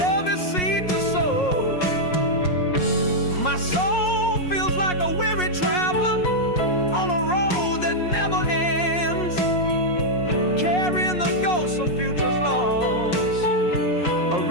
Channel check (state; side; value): late; right; 5.5 ms